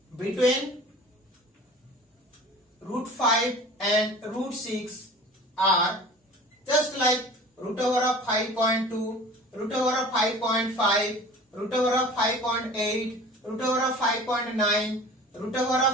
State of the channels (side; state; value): both; normal; correlation 0.42